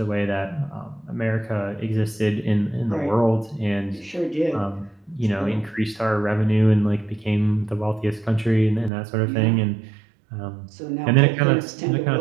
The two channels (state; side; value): drops out; left; at 8.9 s